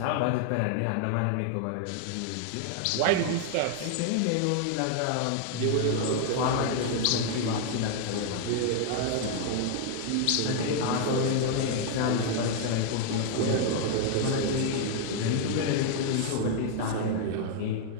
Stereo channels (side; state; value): both; different; correlation 0.00